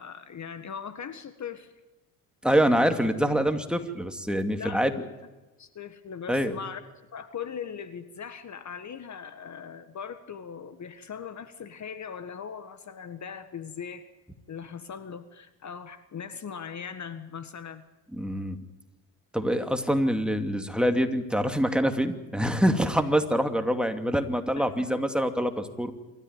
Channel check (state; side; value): normal; both; correlation 0.82